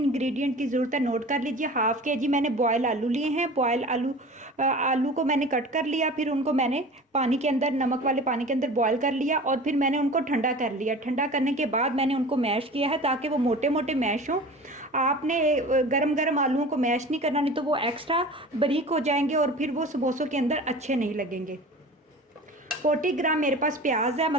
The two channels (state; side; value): normal; both; correlation 0.38